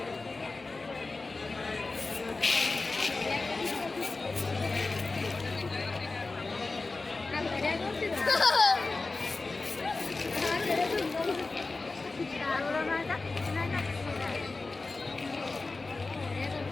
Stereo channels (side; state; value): right; quieter; 3.6 dB